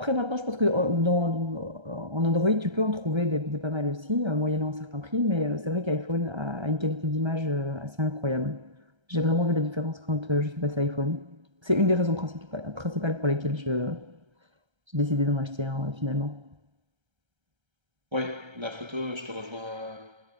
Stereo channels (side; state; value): left; late; 1.3 ms